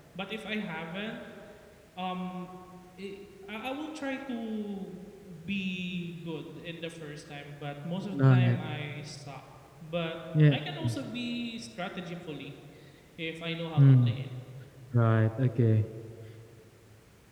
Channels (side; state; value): both; identical; correlation 1.00